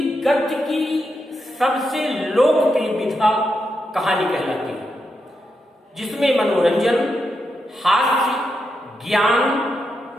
गद्य की सबसे लोकप्रिय विधा कहानी कहलाती है, जिसमें मनोरंजन, हास्य, ज्ञान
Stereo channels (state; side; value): normal; both; correlation 0.85